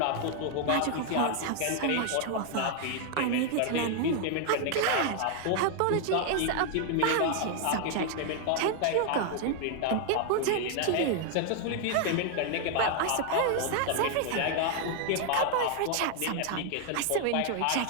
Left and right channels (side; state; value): both; different; correlation 0.00